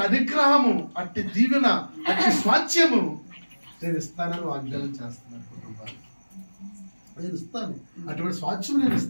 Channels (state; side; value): inverted; both; correlation -1.00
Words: అనుగ్రహము, అట్టి దీవెన, అట్టి స్వాస్థ్యము నేను ఇస్తానని వాగ్దానం చేస్తున్నాను. కుటుంబాలు నేను ఇస్తాను, అటువంటి స్వాస్థ్యం నేను